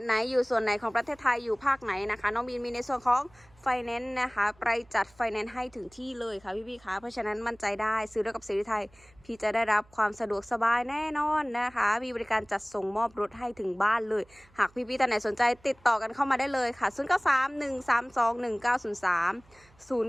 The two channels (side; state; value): right; noise; hum, 29 dB below the sound